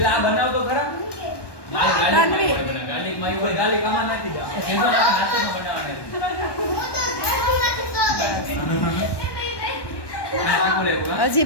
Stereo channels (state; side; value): late; right; 1.2 ms